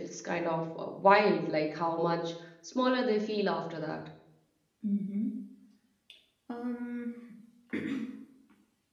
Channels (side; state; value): both; identical; correlation 1.00